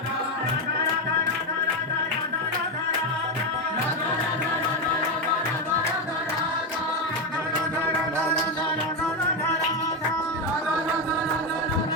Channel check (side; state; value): both; normal; correlation 0.10